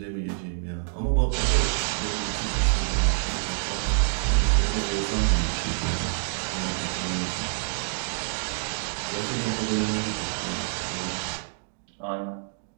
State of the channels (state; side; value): silent; left; digital silence